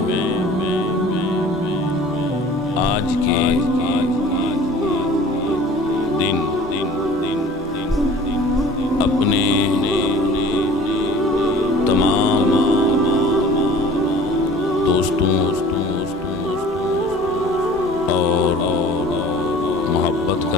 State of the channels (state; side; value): normal; both; correlation 0.46